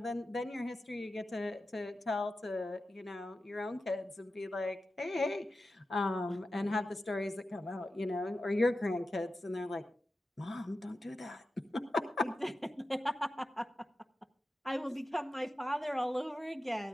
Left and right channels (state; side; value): normal; both; correlation 0.92